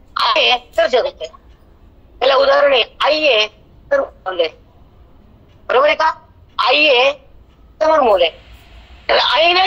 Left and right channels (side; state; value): both; identical; correlation 1.00